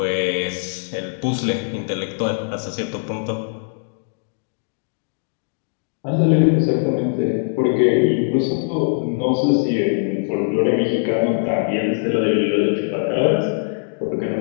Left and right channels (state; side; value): silent; right; digital silence